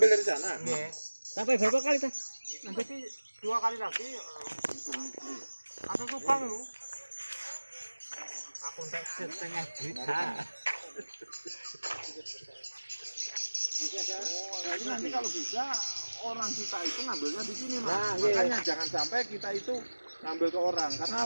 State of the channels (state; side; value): inverted; both; correlation -1.00